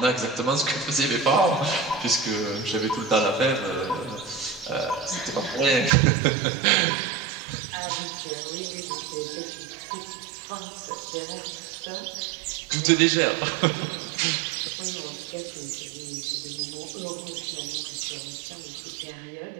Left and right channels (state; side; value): drops out; left; at 5.9 s